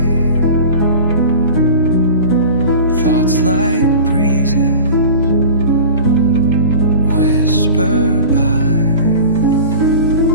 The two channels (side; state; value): both; inverted; correlation -0.36